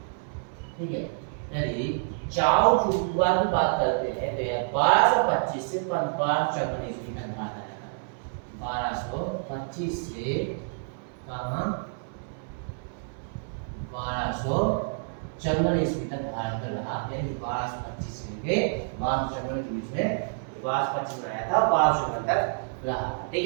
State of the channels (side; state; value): left; silent; digital silence